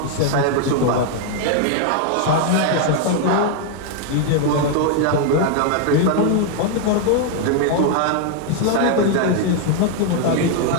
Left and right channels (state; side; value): different; both; correlation 0.00